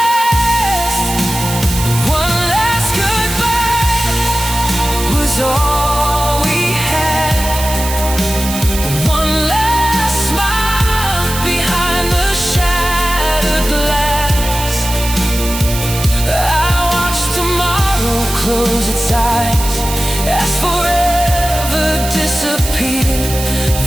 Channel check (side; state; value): right; noise; hiss, 7 dB below the sound